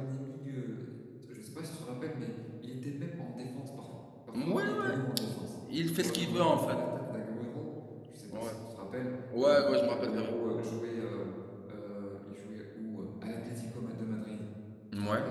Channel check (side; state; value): both; identical; correlation 1.00